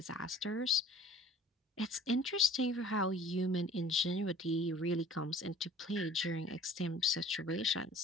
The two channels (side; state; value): both; normal; correlation 0.49